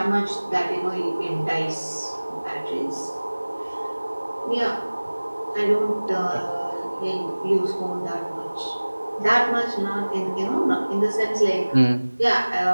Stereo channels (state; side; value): inverted; both; correlation -1.00